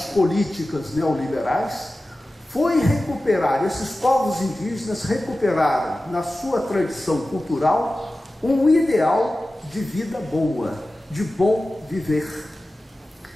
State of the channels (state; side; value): normal; both; correlation 0.95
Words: políticas neoliberais foi recuperar, esses povos indígenas recuperaram na sua tradição cultural um ideal de vida boa, de bom viver.